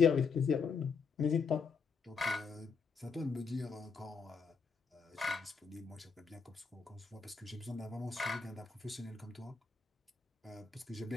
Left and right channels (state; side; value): quieter; right; 5.3 dB